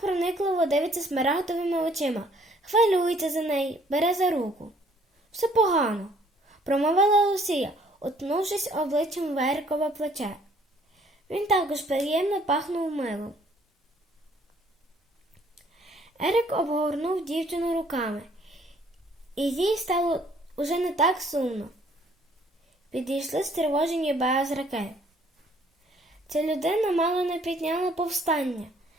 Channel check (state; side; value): normal; both; correlation 0.61